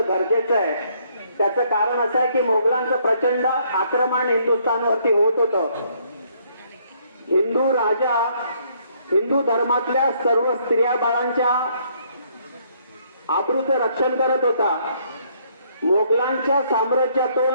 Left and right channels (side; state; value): both; inverted; correlation -0.67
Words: आहे। त्याचं कारण असं आहे की मोगलांचं प्रचंड आक्रमण हिंदुस्थानवरती होत होतं। हिंदू राजा हिंदू धर्मातल्या सर्व स्त्रिया बाळांच्या आबरूचं रक्षण करत होता। मोगलांच्या